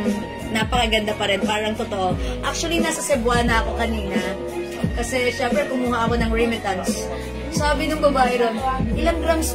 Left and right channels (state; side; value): identical; both; correlation 1.00